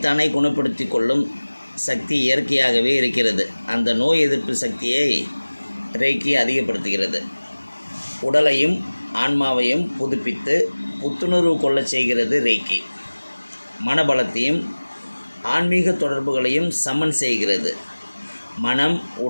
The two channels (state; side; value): inverted; both; correlation -1.00